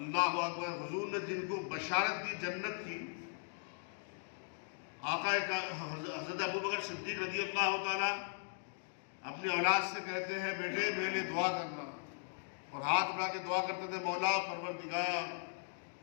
اکبر، حضور نے جن کو بشارت دی جنت کی، آقا حضرت ابوبکر صدیق رضی اللہ تعالیٰ اپنی اولاد سے کہتے ہیں، بیٹے میرے لیے دعا کرنا، اور ہاتھ بڑھا کے دعا کرتے تھے، مولا پروردگار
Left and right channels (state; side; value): silent; right; digital silence